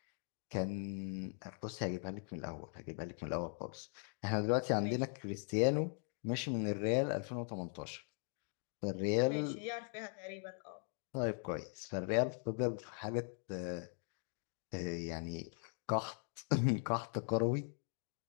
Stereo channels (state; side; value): silent; right; 51 dB below the other